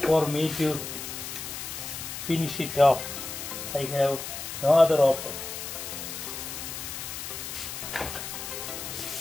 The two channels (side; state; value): left; noise; hiss, 7 dB below the sound